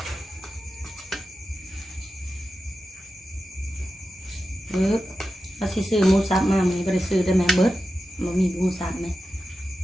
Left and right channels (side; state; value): both; normal; correlation 0.92